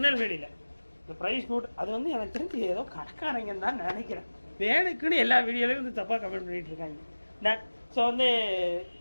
இந்த ப்ரைஸ் நோட் அது வந்து எனக்கு தெரிஞ்சு ஏதோ கடைக்காரங்கன்னு தான் நினைக்கிறேன். வேணுக்குன்னு எல்லா வீடியோலையும் வந்து தப்பாக கமெண்ட் பண்ணிகிட்டு இருக்காங்க. ஸோ வந்து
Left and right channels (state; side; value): inverted; both; correlation -1.00